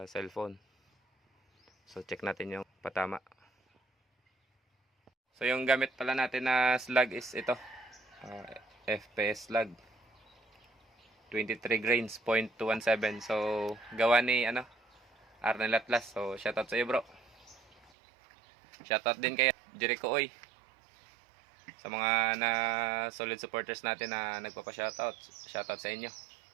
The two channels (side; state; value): left; drops out; at 17.9 s